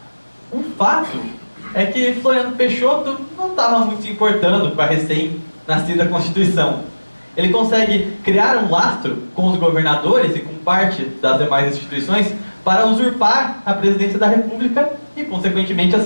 O fato é que Floriano Peixoto não estava muito se importando com a recém-nascida Constituição. Ele consegue criar um lastro com os governadores e com parte das demais instituições para usurpar a presidência da República e, consequentemente,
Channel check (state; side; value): inverted; both; correlation -1.00